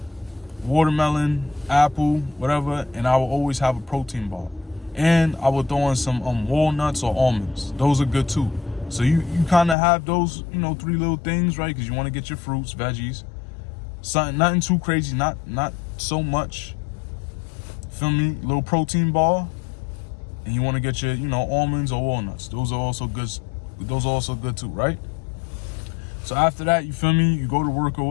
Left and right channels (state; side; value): drops out; right; at 9.8 s